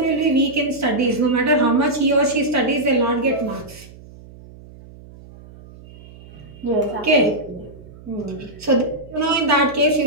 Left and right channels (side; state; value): right; noise; hum, 20 dB below the sound